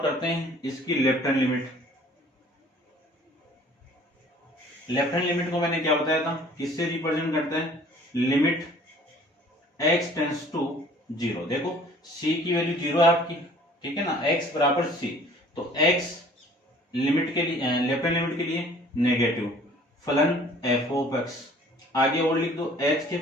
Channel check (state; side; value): normal; both; correlation 0.52